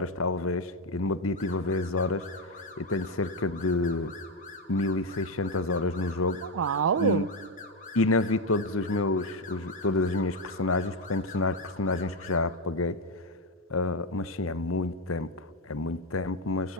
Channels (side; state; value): both; normal; correlation 0.08